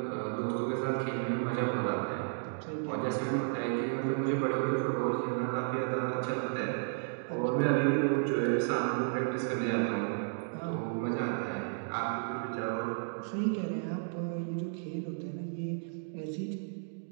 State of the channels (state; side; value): silent; left; digital silence